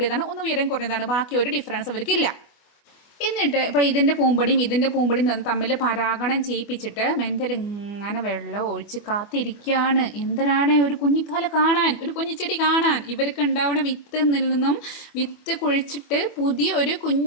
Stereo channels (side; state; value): right; late; 24 ms